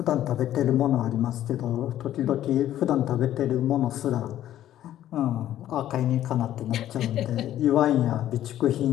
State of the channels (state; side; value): quieter; right; 12.4 dB